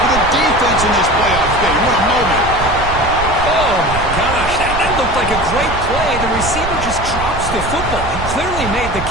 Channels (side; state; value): right; noise; rumble, 8 dB below the sound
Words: the defense in this playoff game. What a moment. Oh, my gosh. That looked like a great play. The receiver just drops the football. He clearly made the